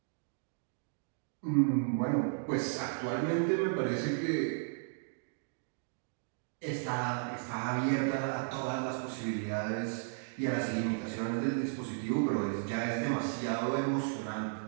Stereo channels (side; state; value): left; silent; digital silence